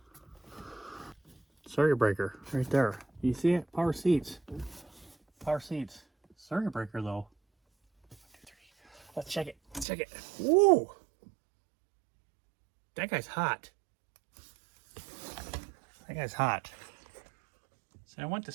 Circuit breaker right there. You see it? Power seats. Power seats. Circuit breaker though. 1, 2, 3. Let's check it. Let's check it. Woo! That guy's hot. That guy's hot. So I went to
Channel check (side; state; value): left; drops out; at 9.9 s